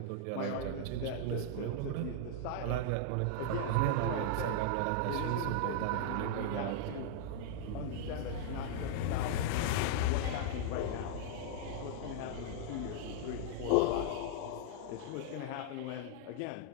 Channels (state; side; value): different; both; correlation -0.01